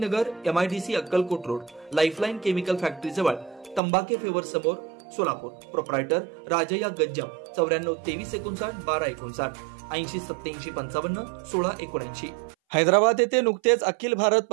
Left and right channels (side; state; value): left; drops out; at 3.8 s